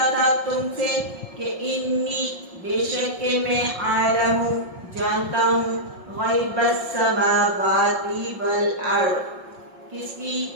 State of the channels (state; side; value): late; left; 5.9 ms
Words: تھا تم سے کہ انی، بے شک کہ میں عالم، جانتا ہوں، غیب السماوات والارض، کس کی،